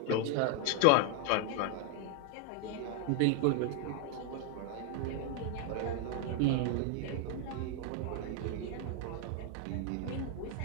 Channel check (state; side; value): different; both; correlation 0.00